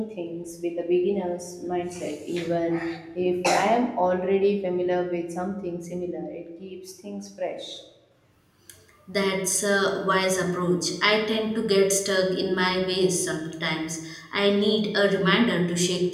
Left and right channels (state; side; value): identical; both; correlation 1.00